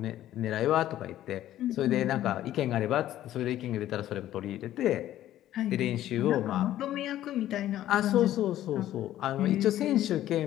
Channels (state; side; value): quieter; right; 13.1 dB